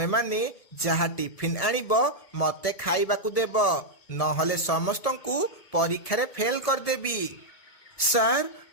माने जहा टिफिन आनिबो मते खाइबाकू देबो, नहले समस्तंकू परीक्षा रे फेल कर देबी। सार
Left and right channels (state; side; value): late; right; 1.7 ms